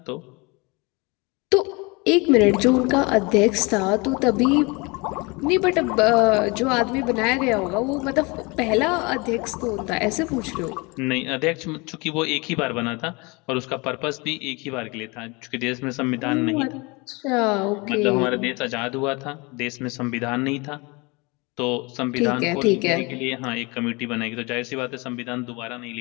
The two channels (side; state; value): right; quieter; 27.0 dB